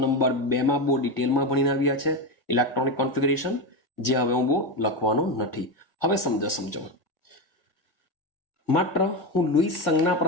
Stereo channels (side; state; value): right; late; 1.7 ms